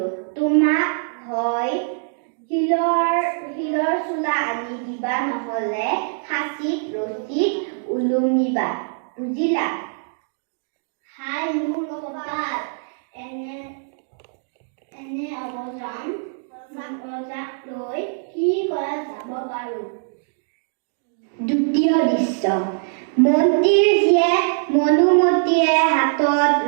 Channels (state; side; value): silent; left; digital silence